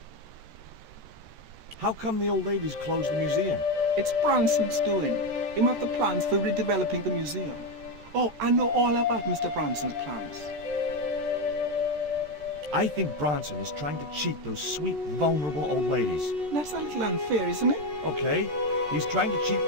How come the old ladies closed the museum? It's Bronson's doing. He have the plans for redeveloping the museum. Oh, I know all about Mr. Bronson's plans. I think Bronson is trying to cheat those sweet, vulnerable old ladies. That's a little unfair, isn't it? Okay, he's trying to cheat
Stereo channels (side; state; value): left; late; 13 ms